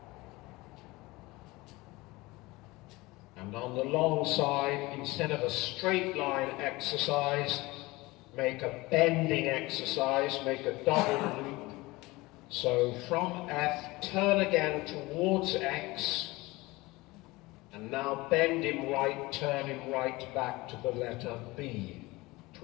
And on the long side, instead of a straight line exercise, make a bending exercise, make a double loop. So from F, turn again towards X, and now bend him right, turn him right back to the letter B.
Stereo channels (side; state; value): right; quieter; 21.5 dB